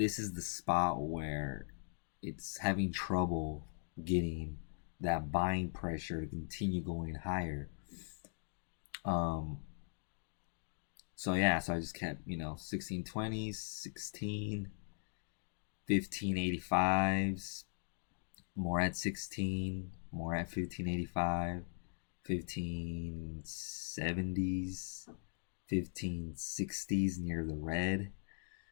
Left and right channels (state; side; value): silent; right; digital silence